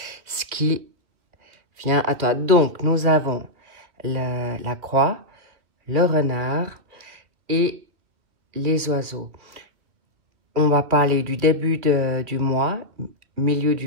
ce qui vient à toi. Donc, nous avons la croix, le renard et les oiseaux. On va parler du début du mois, milieu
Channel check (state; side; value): late; left; 2.6 ms